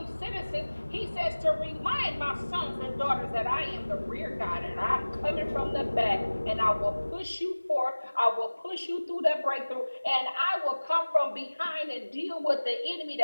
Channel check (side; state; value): both; inverted; correlation -1.00